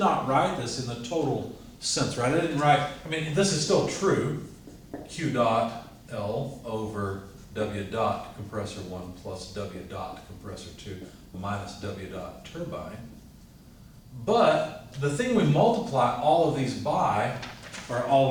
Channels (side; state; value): both; identical; correlation 1.00